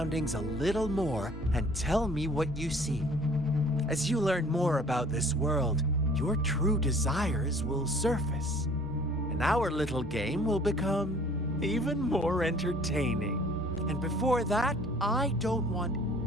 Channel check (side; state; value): both; normal; correlation 0.53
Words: a little more and tell me what you see. As you learn more about this world, your true desires will surface, and our little game will become even more entertaining. And before that, I don't want